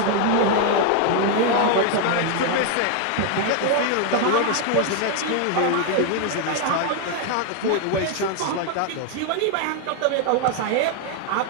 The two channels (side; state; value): both; different; correlation 0.00